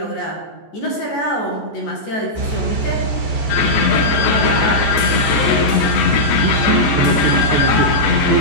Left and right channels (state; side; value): late; right; 14 ms